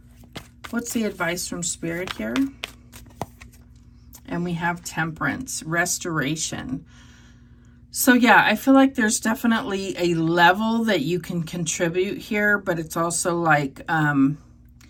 what's the advice from Spirit here? And we have Temperance, Restoration. So yeah, I feel like there's definitely a level that you can contribute here, but it's also like,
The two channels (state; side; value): identical; both; correlation 1.00